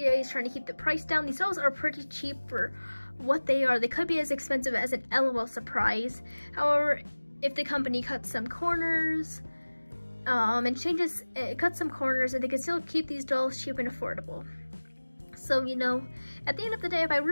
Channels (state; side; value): inverted; both; correlation -1.00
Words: is trying to keep the price down. These dolls are pretty cheap for what they are. They could be as expensive as an LOL surprise. However, if the company cuts some corners and cuts some corners, and they can still keep these dolls cheap and affordable. So, you know, at the end of the day, if I